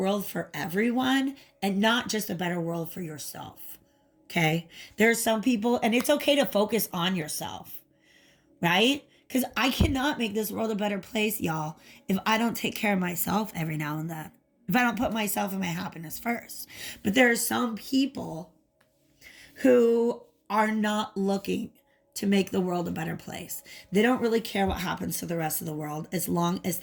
for everyone and not just a better world for yourself. Okay? There are some people, and it's okay to focus on yourself, right? Because I cannot make this world a better place, y'all, if I don't take care of myself every now and then. If I don't put myself and my happiness first. But there are some people who are not looking to make the world a better place. They don't really care what happens to the rest of the world as long as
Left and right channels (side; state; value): both; identical; correlation 1.00